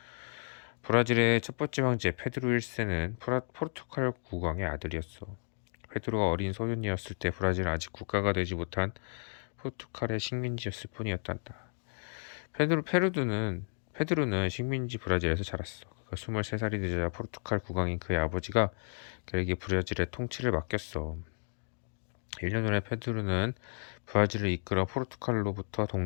브라질의 첫 번째 황제 페드루 1세는 포르투갈 국왕의 아들이었어. 페드로가 어린 소년이었을 때 브라질은 아직 국가가 되지 못한 포르투갈의 식민지였을 뿐이었단다. 페드루는 식민지 브라질에서 자랐어. 그가 23살이 되자 포르투갈 국왕인 그의 아버지가 그에게 브라질의 통치를 맡겼어. 1년 후에 페드루는 브라질을 이끌어 포르투갈로부터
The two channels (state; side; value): silent; right; digital silence